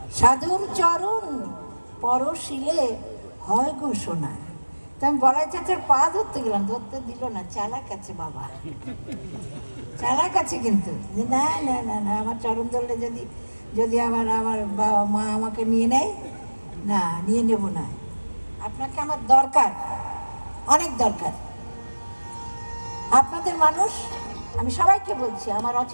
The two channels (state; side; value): inverted; both; correlation -1.00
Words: সাধুর চরণ পরশিলে হয় গো সোনা। তো আমি বলাই চাচার পা ধরতে গেলাম, ধরতে দিল না, চালাক আছে বাবা, চালাক আছে। কিন্তু না না না না, আমার চরণ ধরলে যদি আমার বাবা মা আমাকে নিয়ে নেয়, না নিয়ে নেব না, আপনাকে আমার দরকার, অনেক দরকার। আপনাদের মানুষ, আমি সবাইকে বলছি, আমার